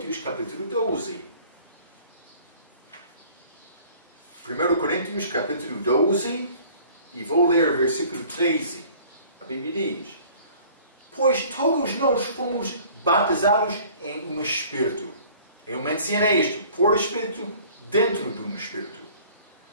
capítulo 12. 1 Coríntios capítulo 12 e vou ler versículo 13. A Bíblia diz: pois todos nós fomos batizados em um Espírito. Eu mencionei isto, por Espírito, dentro de um Espírito.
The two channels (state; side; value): inverted; both; correlation -0.51